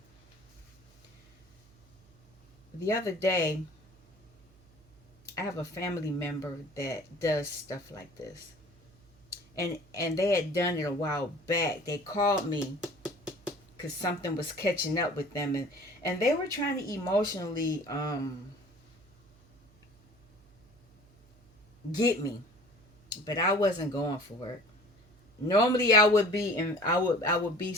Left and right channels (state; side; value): noise; right; hum, 29 dB below the sound